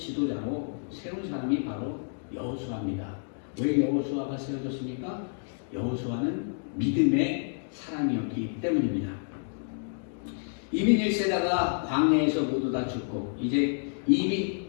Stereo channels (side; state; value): right; silent; digital silence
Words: 세운 사람이 바로 여호수아입니다. 왜 여호수아가 세워졌습니까? 여호수아는 믿음의 사람이었기 때문입니다. 이민 1세대가 광야에서 모두 다 죽고 이제 이민